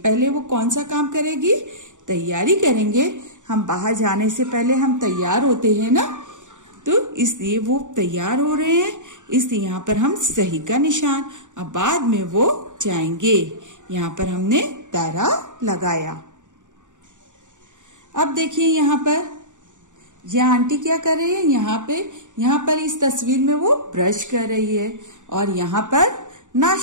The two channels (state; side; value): late; left; 0.86 ms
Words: वो कौन सा काम करेगी, तैयारी करेंगे। हम बाहर जाने से पहले हम तैयार होते हैं ना, तो इसलिए वो तैयार हो रहे हैं, इसलिए यहाँ पर हम सही का निशान। अब बाद में वो जाएंगे, यहाँ पर हमने दायरा लगाया। अब देखिए यहाँ पर यह आंटी क्या कर रही है, यहाँ पर इस तस्वीर में वो ब्रश कर रही है और यहाँ पर